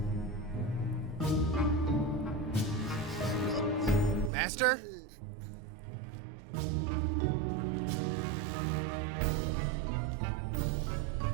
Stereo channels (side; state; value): left; drops out; at 4.3 s